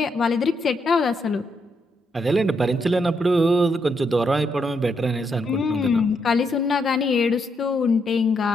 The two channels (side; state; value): both; normal; correlation 0.78